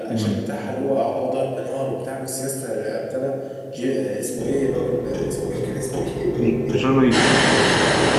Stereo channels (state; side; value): identical; both; correlation 1.00